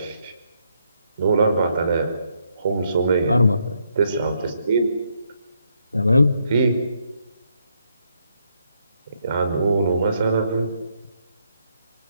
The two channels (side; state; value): both; inverted; correlation -0.76